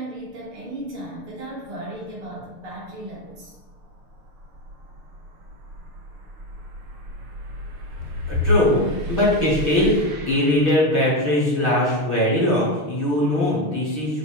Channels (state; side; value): late; left; 6.6 ms